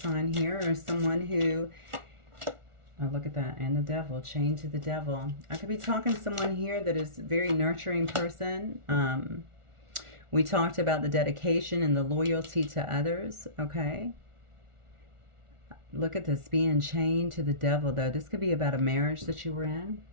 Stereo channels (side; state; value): left; late; 1.4 ms